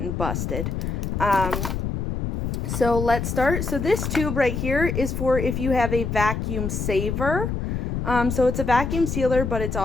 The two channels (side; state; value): left; noise; rumble, 2 dB below the sound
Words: and busted. So let's start. So this tube right here is for if you have a vacuum saver. So it's a vacuum sealer, but it's